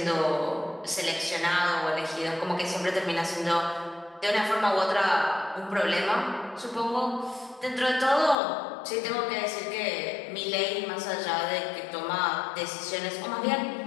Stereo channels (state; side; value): drops out; right; at 8.3 s